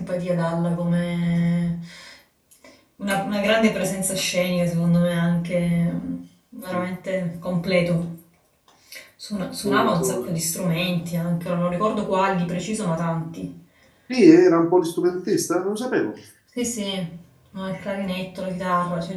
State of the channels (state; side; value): identical; both; correlation 1.00